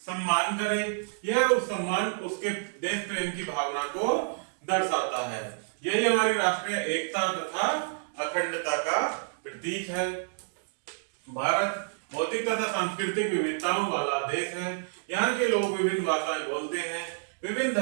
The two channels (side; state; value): left; silent; digital silence